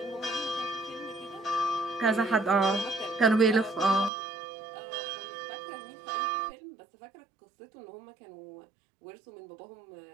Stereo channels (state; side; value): drops out; left; at 4.1 s